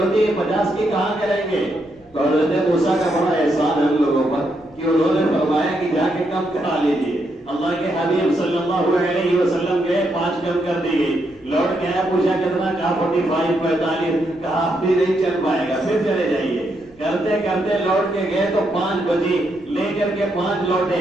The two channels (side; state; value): left; noise; rumble, 30 dB below the sound